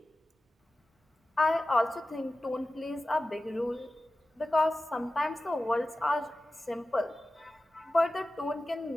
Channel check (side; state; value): both; normal; correlation 0.95